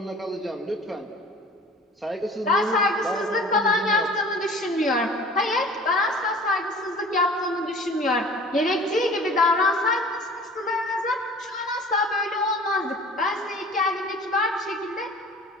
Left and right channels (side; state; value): both; normal; correlation 0.45